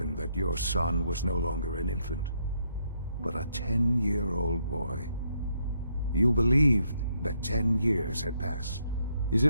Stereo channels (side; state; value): both; inverted; correlation -0.75